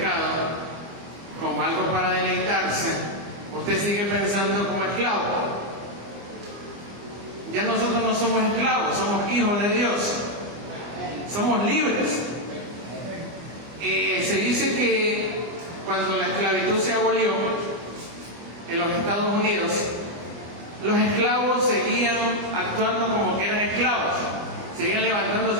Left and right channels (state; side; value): late; left; 25 ms